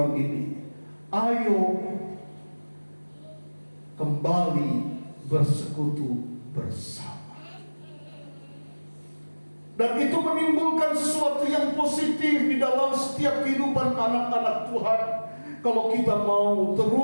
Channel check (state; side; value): inverted; both; correlation -1.00